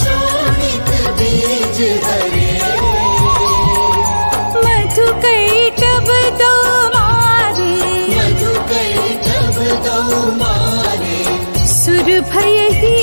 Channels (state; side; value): inverted; both; correlation -1.00